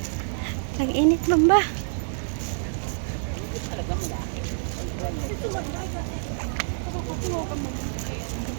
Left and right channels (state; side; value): silent; left; digital silence